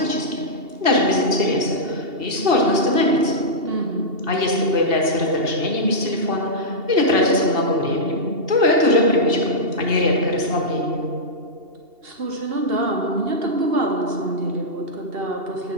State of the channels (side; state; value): left; late; 2.7 ms